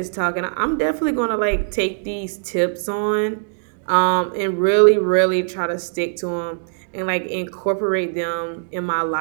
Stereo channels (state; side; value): silent; left; 65 dB below the other